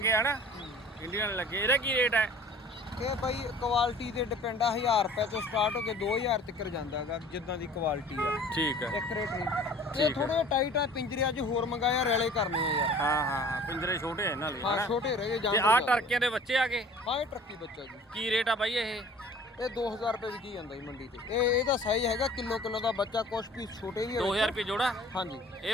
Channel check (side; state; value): both; normal; correlation 0.47